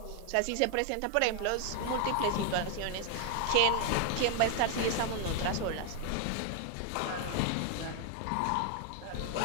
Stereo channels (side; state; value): both; different; correlation 0.00